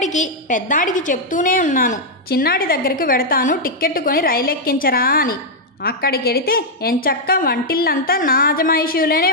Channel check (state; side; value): normal; both; correlation -0.03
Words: పెద్దాడికి చెప్తూనే ఉన్నాను, చిన్నాడి దగ్గరికి వెడతాను, టిక్కెట్టు కొని రైలెక్కించరా అని. అక్కడికెడితే ఎంచక్కా వంటిల్లంతా నా అజమాయిషీలోనే